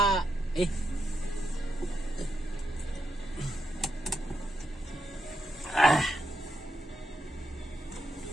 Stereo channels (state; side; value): normal; both; correlation 0.83